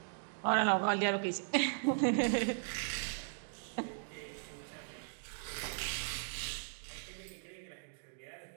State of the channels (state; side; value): silent; left; digital silence